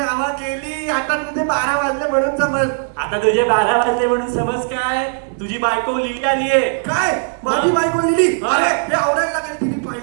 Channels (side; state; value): left; silent; 61 dB below the other